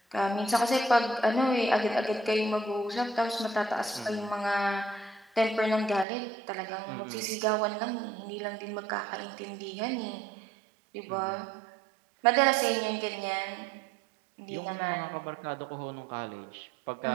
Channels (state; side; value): drops out; left; at 6.1 s